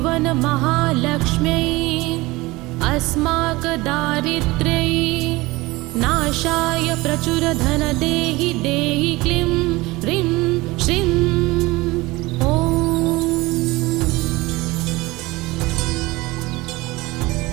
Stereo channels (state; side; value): quieter; left; 21.2 dB